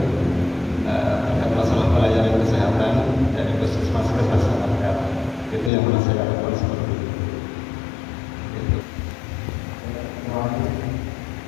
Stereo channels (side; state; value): right; drops out; at 5.7 s